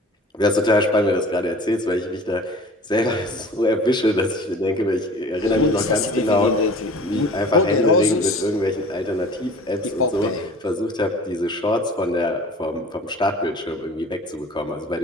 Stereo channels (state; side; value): normal; both; correlation 0.43